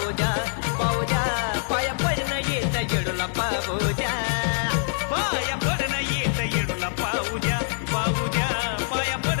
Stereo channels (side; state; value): right; silent; digital silence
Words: द्या पाहू द्या पाया पडणं येत येडूला पाहू द्या पाया पडणं येत येडूला पाहू द्या पाहू द्या पाया